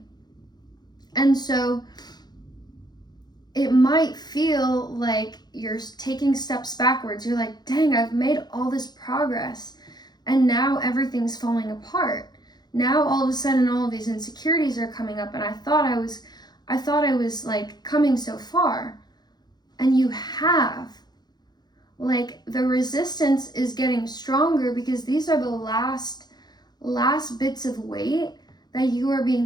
And so it might feel like you're taking steps backwards. You're like, dang, I've made all this progress and now everything's falling apart. Now all of a sudden all of these insecurities are coming up, and I thought I I thought I was like coming so far. And you have. Like, the resistance is getting stronger because these are the last bits of weight that you are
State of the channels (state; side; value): late; right; 0.20 ms